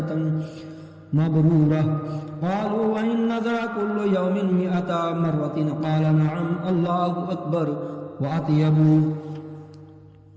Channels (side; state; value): both; identical; correlation 1.00